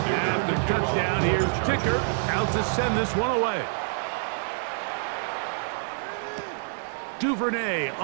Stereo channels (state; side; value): silent; left; 60 dB below the other